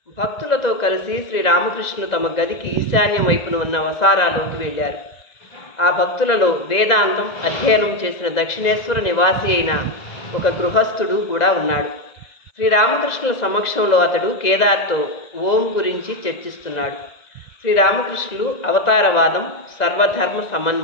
భక్తులతో కలిసి శ్రీరామకృష్ణులు తమ గదికి ఈశాన్యం వైపున ఉన్న వసారాలోకి వెళ్ళారు. ఆ భక్తులలో వేదాంతం అధ్యయనం చేసిన దక్షిణేశ్వర నివాసి అయిన ఒక గృహస్థుడు కూడా ఉన్నాడు. శ్రీరామకృష్ణుల సమక్షంలో అతడు కేదార్తో ఓం గురించి చర్చిస్తున్నాడు. శ్రీరామకృష్ణులు అవతారవాదం, సర్వధర్మ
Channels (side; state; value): right; late; 1.9 ms